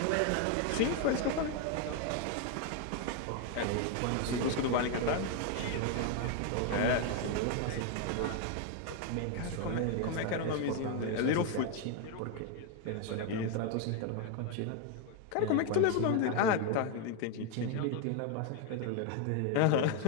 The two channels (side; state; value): both; different; correlation 0.01